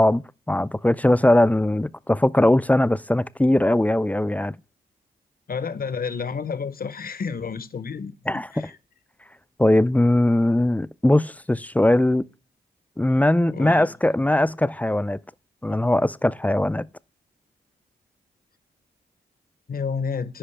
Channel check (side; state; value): both; normal; correlation 0.95